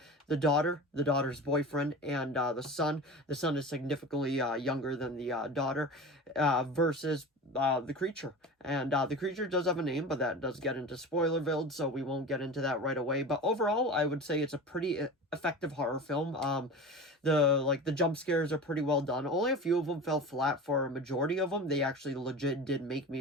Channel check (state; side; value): normal; both; correlation 0.32